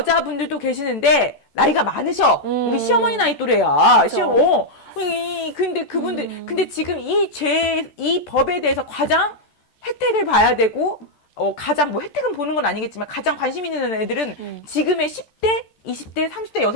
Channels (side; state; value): right; late; 14 ms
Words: 계시는데 나이가 많으셔. 우리 시어머니 나이 또래야. 그렇죠. 근데 그분들, 근데 지금 이 법에 대해서 가장 혜택을 봐야 되고, 가장 뭐 혜택은 보는 건 아니겠지만 가장 관심 있는 애들은 지금의 10대, 20대, 30대